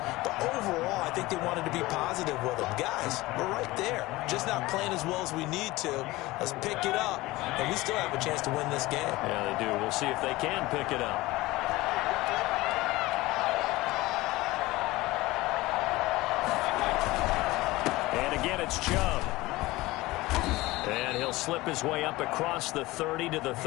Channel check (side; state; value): right; quieter; 19.6 dB